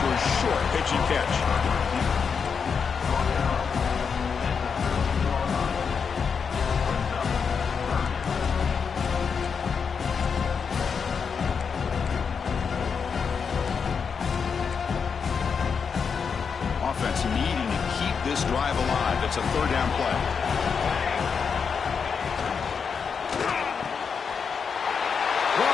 a short pitching catch. Offense needing to keep this drive alive. It's a third down play.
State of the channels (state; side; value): quieter; right; 6.1 dB